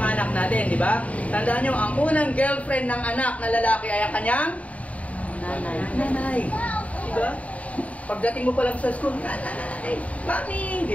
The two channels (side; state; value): right; late; 0.068 ms